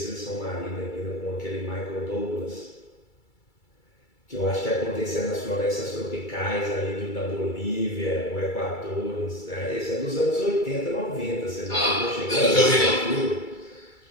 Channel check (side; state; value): right; late; 2.3 ms